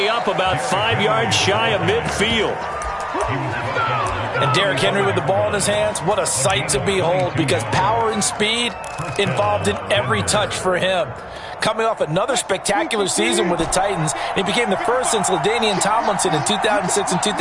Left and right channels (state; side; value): identical; both; correlation 1.00